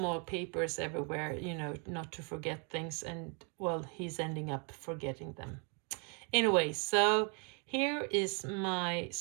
papers everywhere, not to forget things. And, well, he's ending up forgetting them. Anyway, so here is my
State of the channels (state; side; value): quieter; left; 35.7 dB